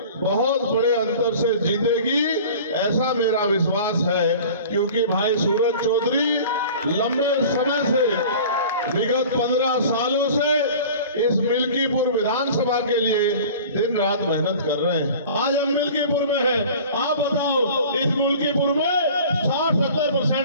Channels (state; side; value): inverted; both; correlation -0.42